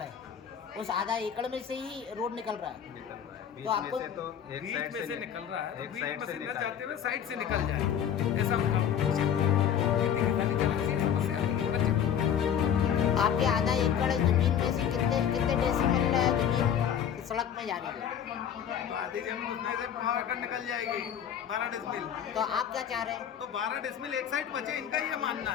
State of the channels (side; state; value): right; quieter; 8.9 dB